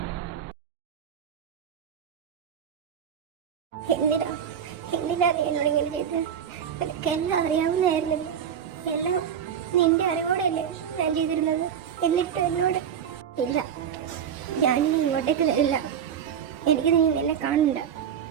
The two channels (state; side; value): quieter; left; 8.4 dB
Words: എന്തിനാ എന്നോട് ഇങ്ങനെ ചെയ്തത്? എനിക്കെല്ലാം അറിയാവുന്നതായിരുന്നില്ല. എല്ലാം നിന്റെ അറിവോടെയല്ലേ ഞാൻ ചെയ്തിരുന്നത്. എന്നിട്ട് എന്നോട് ഇല്ല, ഞാനിനി ഇങ്ങോട്ടേക്ക് വരില്ല. എനിക്ക് നീ നിന്നെ കാണണ്ട.